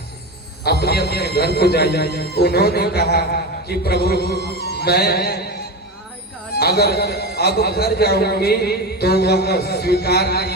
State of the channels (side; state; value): both; normal; correlation 0.22